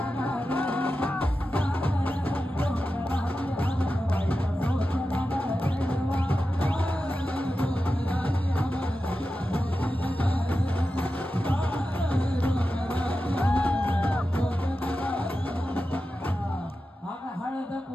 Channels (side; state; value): both; normal; correlation 0.92